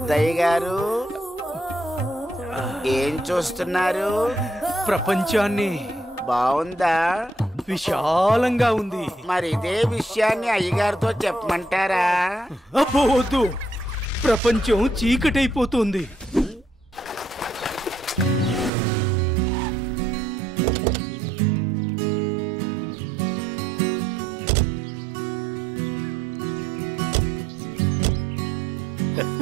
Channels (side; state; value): left; drops out; at 18.7 s